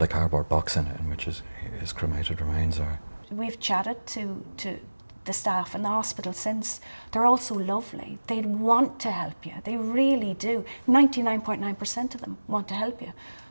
a cardboard box in it in which his cremated remains are. We've chatted to the staff in the hospital since. They're all so lovely. They want to help you. They really do. 99.9% of them want to help you,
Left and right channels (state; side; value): inverted; both; correlation -1.00